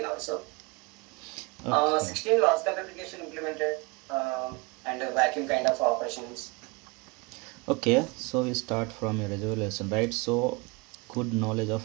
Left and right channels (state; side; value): quieter; left; 27.8 dB